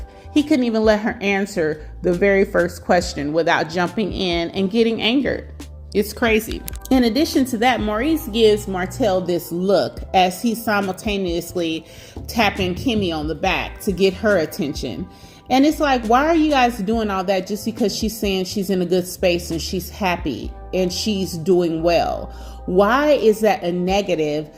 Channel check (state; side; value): identical; both; correlation 1.00